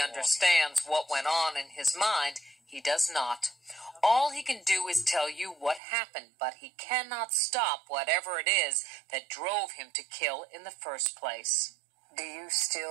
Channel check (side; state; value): left; drops out; at 5.8 s